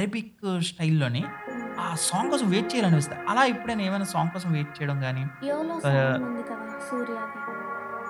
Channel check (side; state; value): both; identical; correlation 1.00